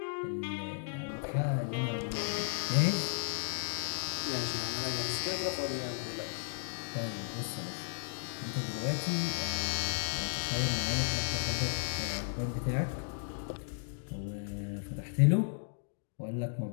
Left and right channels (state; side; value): silent; right; digital silence